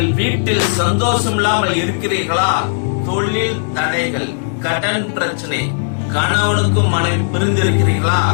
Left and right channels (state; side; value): silent; right; 63 dB below the other